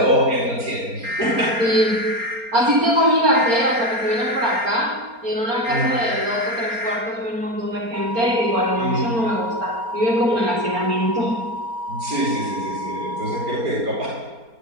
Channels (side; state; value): left; late; 4.3 ms